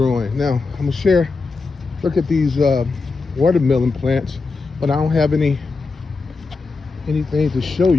Now, I'm gonna share, look at these watermelon plants. but I don't have anything to show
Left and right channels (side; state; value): right; quieter; 4.1 dB